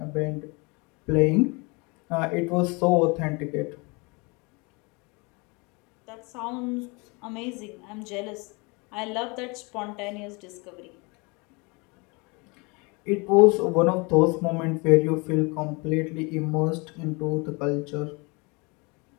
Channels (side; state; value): right; quieter; 28.8 dB